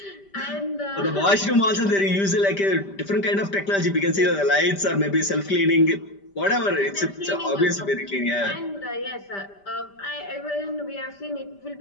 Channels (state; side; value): late; right; 5.1 ms